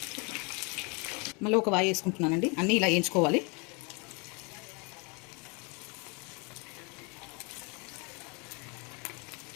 మళ్ళీ ఒక వాయి వేసుకుంటున్నానండి. అన్నీ ఇలా వేయించుకోవాలి.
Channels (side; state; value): right; quieter; 31.7 dB